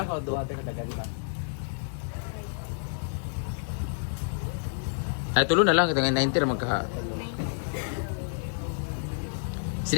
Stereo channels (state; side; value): silent; right; digital silence